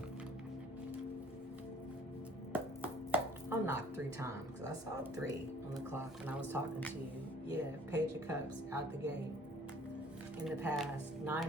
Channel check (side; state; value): both; normal; correlation 0.55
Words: I'll knock 3 times because I saw 3 on the clock when I was talking to you. Yeah, Page of Cups out the gate. In the past,